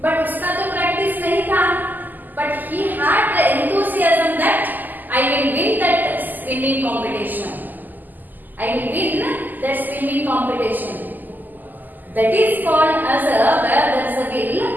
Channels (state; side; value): late; left; 0.085 ms